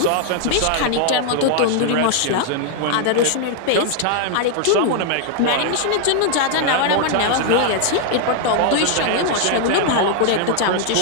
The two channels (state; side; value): different; both; correlation 0.00